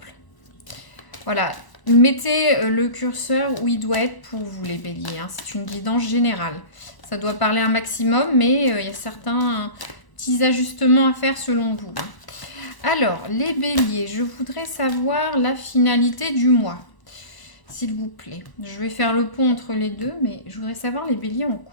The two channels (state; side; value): late; right; 1.0 ms